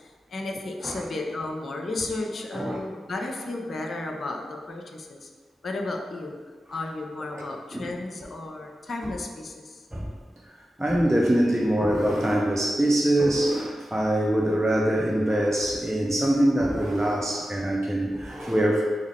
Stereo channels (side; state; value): both; normal; correlation 0.92